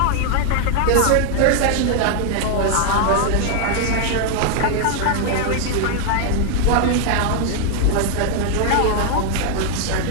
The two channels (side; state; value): both; different; correlation 0.00